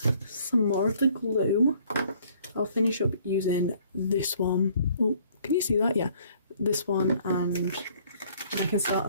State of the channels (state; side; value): inverted; both; correlation -0.60